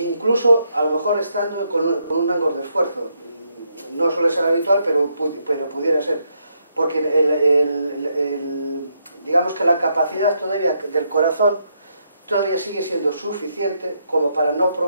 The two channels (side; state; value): both; inverted; correlation -0.77